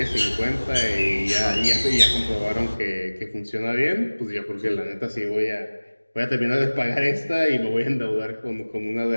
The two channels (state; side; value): inverted; both; correlation -1.00